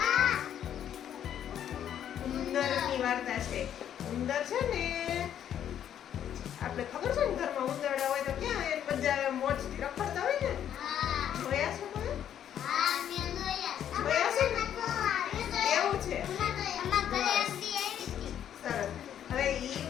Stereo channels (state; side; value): quieter; right; 9.9 dB